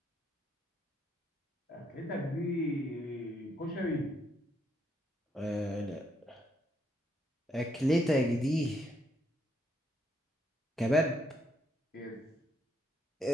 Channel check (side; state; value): both; normal; correlation 0.74